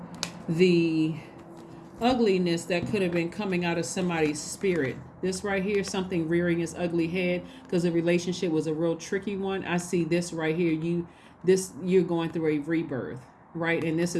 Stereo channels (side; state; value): both; identical; correlation 1.00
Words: the ugliness that could have been coming out of somebody's spirit. This right here, something rearing its ugly head because the relationship was a real tricky one. I see this right here. You're going through a rebirth, right? And this